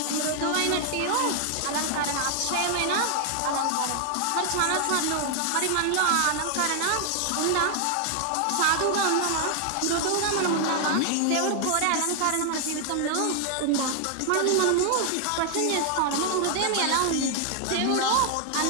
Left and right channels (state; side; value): different; both; correlation 0.00